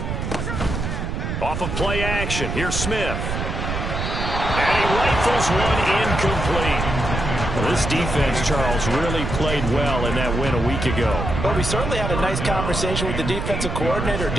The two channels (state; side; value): noise; right; rumble, 3 dB below the sound